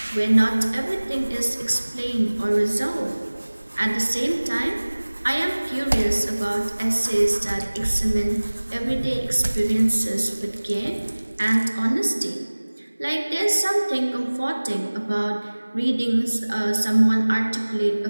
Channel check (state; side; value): inverted; both; correlation -1.00